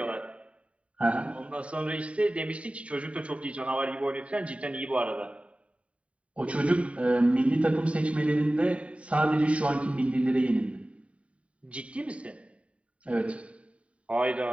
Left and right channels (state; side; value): late; left; 0.064 ms